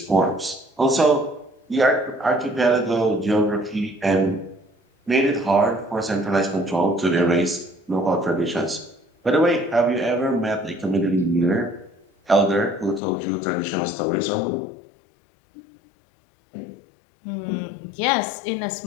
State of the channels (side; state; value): right; drops out; at 13.0 s